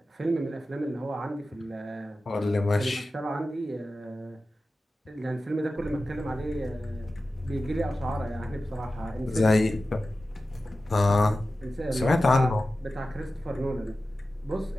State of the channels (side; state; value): both; normal; correlation 0.94